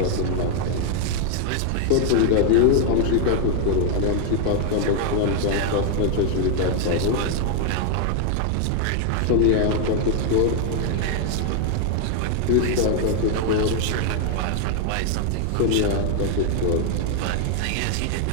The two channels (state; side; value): different; both; correlation 0.00